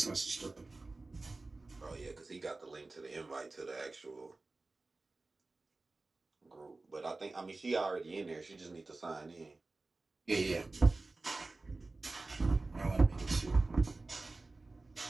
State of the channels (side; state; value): left; quieter; 3.3 dB